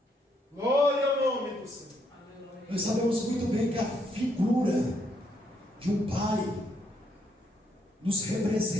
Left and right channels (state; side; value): normal; both; correlation 0.74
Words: Glória ao nome do Senhor. Nós sabemos muito bem que a figura de um Pai nos